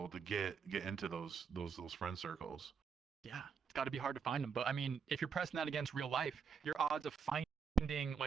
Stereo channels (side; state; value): left; quieter; 6.3 dB